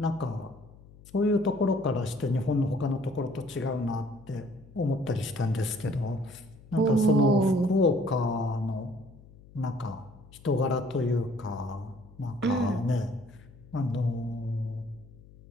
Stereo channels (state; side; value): noise; left; hum, 22 dB below the sound